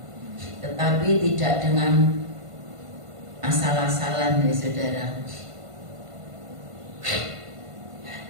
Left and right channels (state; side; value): late; left; 1.5 ms